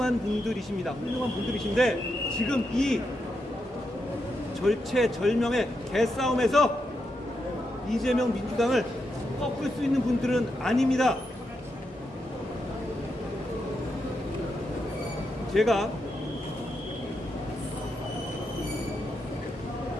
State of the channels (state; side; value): normal; both; correlation 0.84